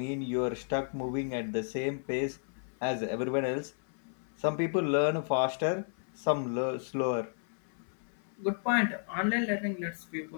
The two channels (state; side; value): silent; right; 56 dB below the other